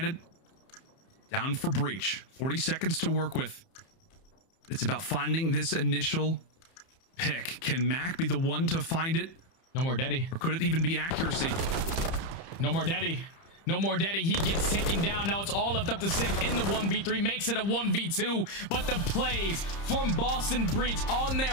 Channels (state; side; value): late; right; 30 ms